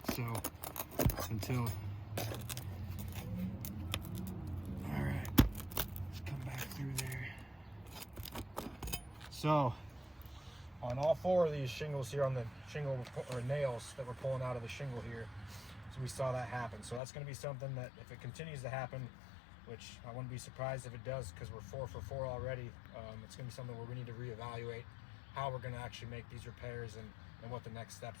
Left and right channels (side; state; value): right; drops out; at 17.0 s